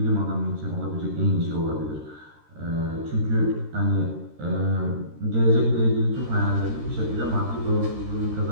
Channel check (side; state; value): left; late; 13 ms